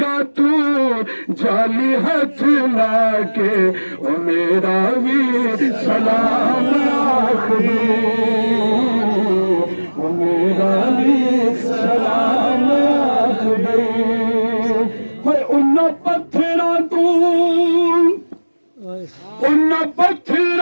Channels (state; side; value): inverted; both; correlation -1.00